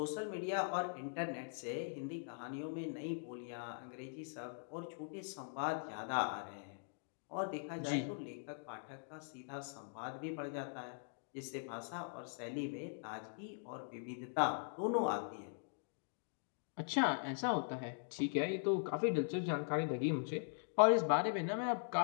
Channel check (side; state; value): right; silent; digital silence